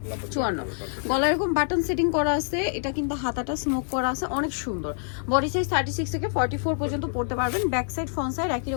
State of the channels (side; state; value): right; silent; 61 dB below the other